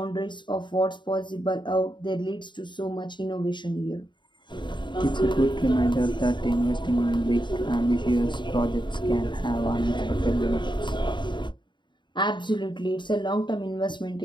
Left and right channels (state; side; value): late; right; 0.23 ms